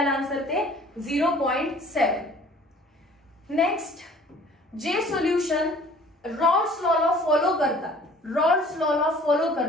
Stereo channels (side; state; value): both; normal; correlation 0.51